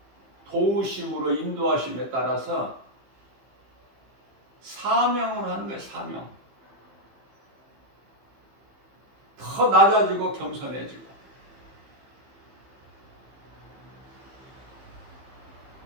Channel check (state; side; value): late; left; 15 ms